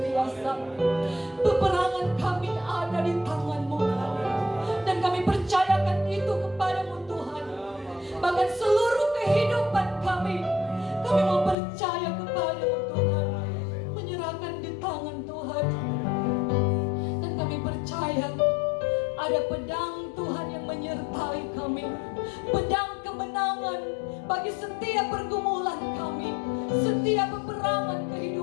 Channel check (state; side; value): drops out; right; at 11.6 s